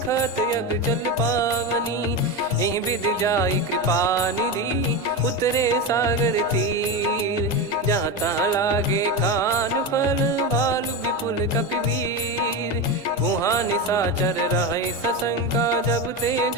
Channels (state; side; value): normal; both; correlation 0.17